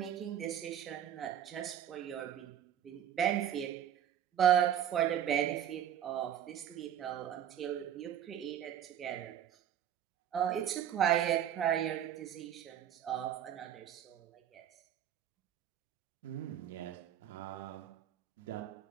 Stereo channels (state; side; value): quieter; left; 10.1 dB